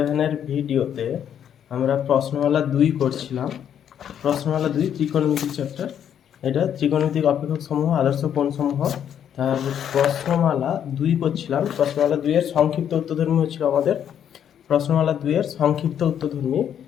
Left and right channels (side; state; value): right; quieter; 9.2 dB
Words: ভিডিওতে আমরা প্রশ্নমালা 2 করছিলাম। প্রশ্নমালা 2 ত্রিকোণমিতিক চ্যাপ্টার। এটা ত্রিকোণমিতিক অপেক্ষক সমূহ, আদর্শ কোণ সমূহ। তার প্রশ্নমালা 2 করছিলাম। প্রশ্নমালা 2 এর সংক্ষিপ্ত উত্তরধর্মী হচ্ছিল আমাদের। প্রশ্নমালা 2 এর সংক্ষিপ্ত উত্তরধর্মী